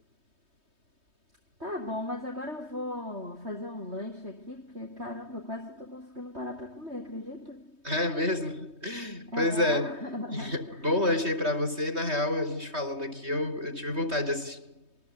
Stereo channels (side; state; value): left; late; 3.2 ms